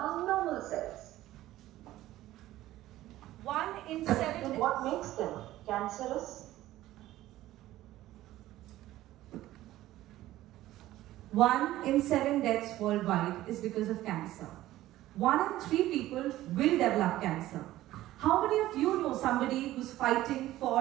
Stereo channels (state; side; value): quieter; left; 15.2 dB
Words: normal cells. 1 in 7. And what makes them cancerous? 1 in 7 deaths worldwide is because of cancer. 1 in 3 people will develop cancer. How many of you know somebody who's fighting,